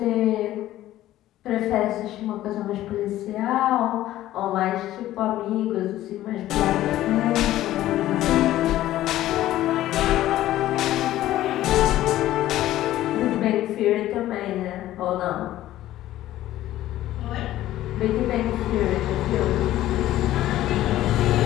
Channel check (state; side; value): quieter; right; 14.3 dB